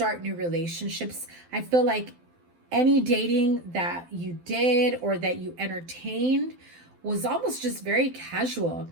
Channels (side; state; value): left; late; 12 ms